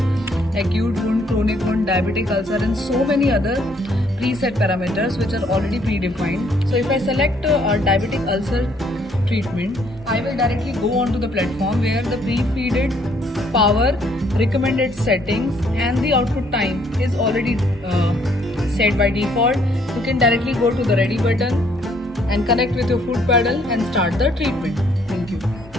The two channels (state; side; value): normal; both; correlation 0.66